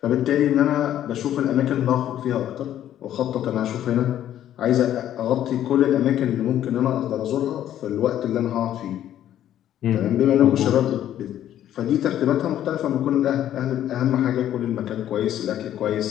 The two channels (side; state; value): right; quieter; 11.5 dB